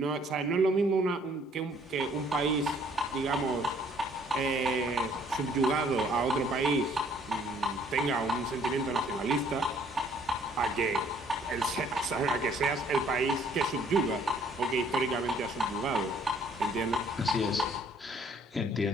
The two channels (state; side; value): normal; both; correlation 0.61